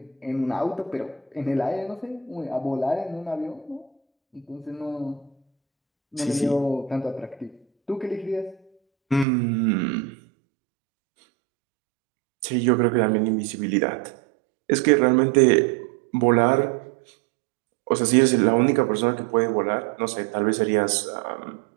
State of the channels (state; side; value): drops out; left; at 9.2 s